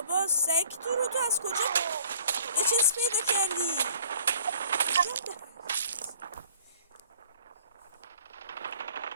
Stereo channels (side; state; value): both; inverted; correlation -0.55